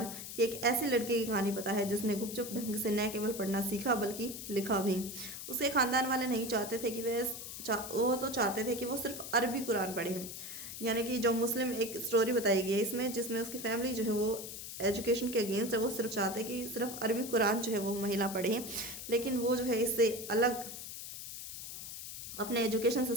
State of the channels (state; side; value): noise; left; hiss, 9 dB below the sound